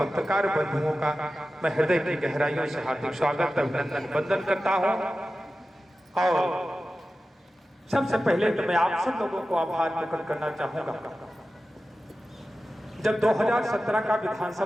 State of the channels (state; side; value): normal; both; correlation 0.94